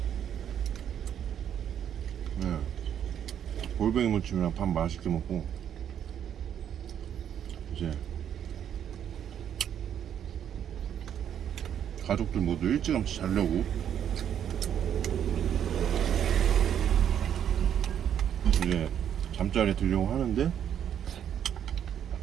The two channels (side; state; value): left; quieter; 9.3 dB